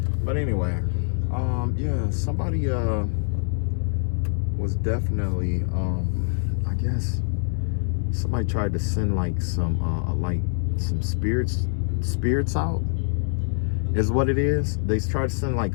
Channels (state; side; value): silent; right; digital silence